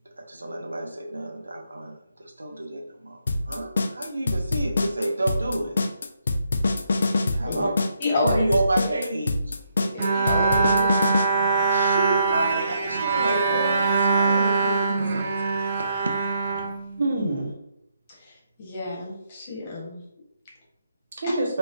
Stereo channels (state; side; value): inverted; both; correlation -0.76